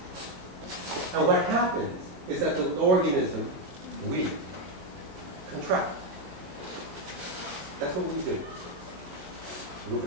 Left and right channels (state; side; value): late; left; 22 ms